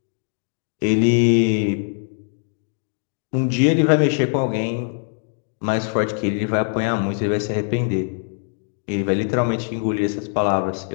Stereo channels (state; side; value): silent; right; 64 dB below the other